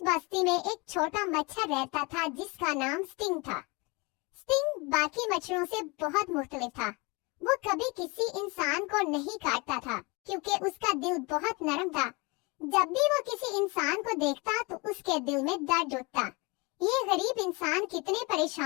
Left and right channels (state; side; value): quieter; right; 27.4 dB